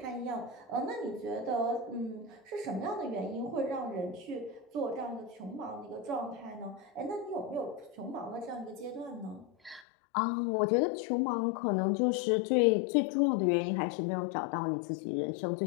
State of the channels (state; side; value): drops out; right; at 9.9 s